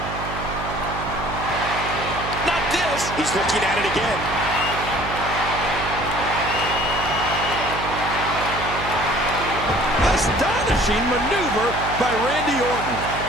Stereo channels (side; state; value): right; noise; hum, 8 dB below the sound